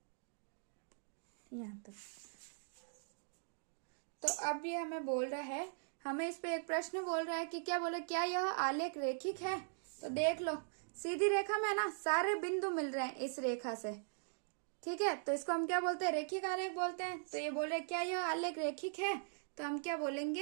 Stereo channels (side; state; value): left; silent; digital silence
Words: यहाँ तक। तो अब ये हमें बोल रहा है, हमें इस पे एक प्रश्न बोल रहा है कि क्या बोले, क्या यह आलेख रेखिक है। तो देख लो, सीधी रेखा में ना सारे बिंदु मिल रहे हैं इस रेखा से। ठीक है, तो इसको हम क्या बोलते हैं, रेखिक आलेख बोलते हैं। तो ये बोल रहे क्या यह आलेख रेखिक है, तो हम क्या